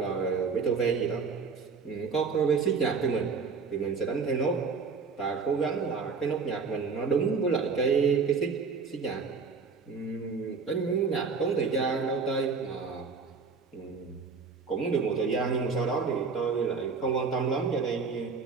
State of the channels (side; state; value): left; quieter; 5.1 dB